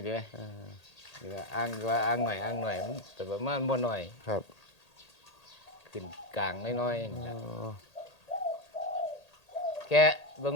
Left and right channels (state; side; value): late; right; 1.8 ms